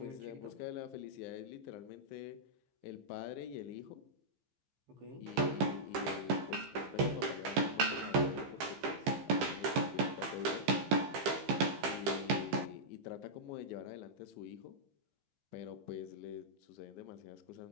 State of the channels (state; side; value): late; left; 15 ms